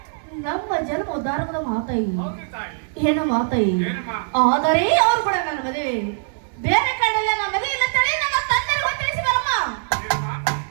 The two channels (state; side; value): silent; left; digital silence